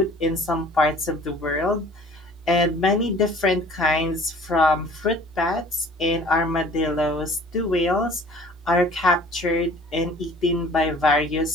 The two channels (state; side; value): normal; both; correlation 0.50